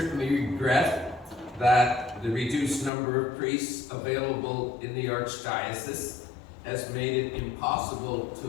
regret that the reduced number of priests available in the Archdiocese has made it impossible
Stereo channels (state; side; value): drops out; right; at 2.9 s